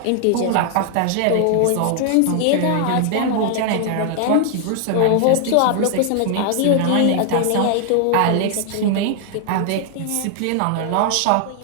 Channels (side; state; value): both; different; correlation 0.00